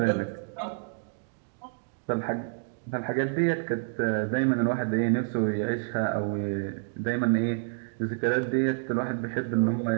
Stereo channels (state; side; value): silent; left; digital silence